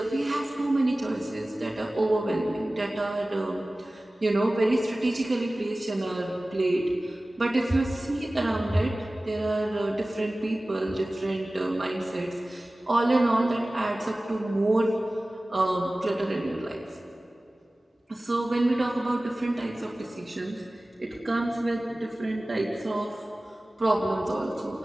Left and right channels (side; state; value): both; normal; correlation 0.97